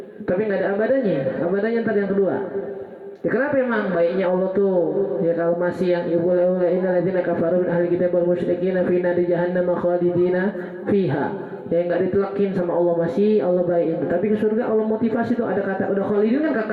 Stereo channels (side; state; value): both; identical; correlation 1.00